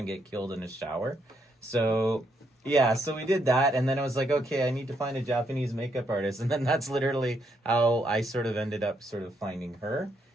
get killed in a shower. So yeah, so we did that. And then I was like, okay, I need to find a Japanese makeup artist. And then that's literally how I sort of ended up sort of finding her.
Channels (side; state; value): both; normal; correlation 0.76